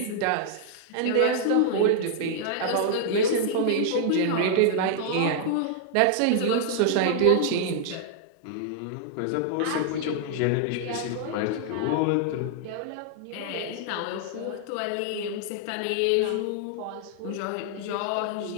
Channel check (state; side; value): different; both; correlation -0.01